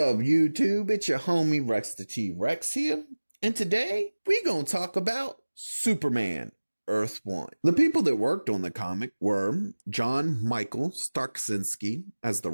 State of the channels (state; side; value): inverted; both; correlation -1.00